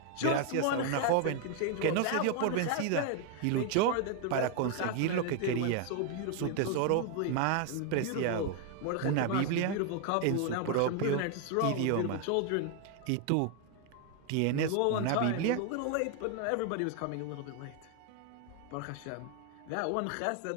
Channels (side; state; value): both; different; correlation 0.01